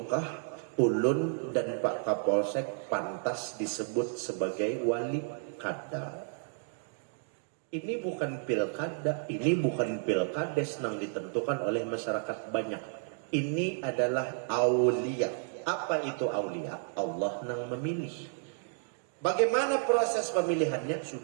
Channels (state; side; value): silent; left; 57 dB below the other